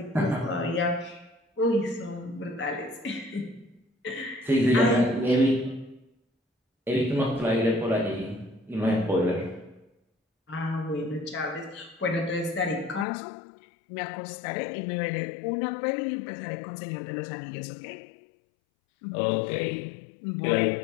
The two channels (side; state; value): right; drops out; at 13.1 s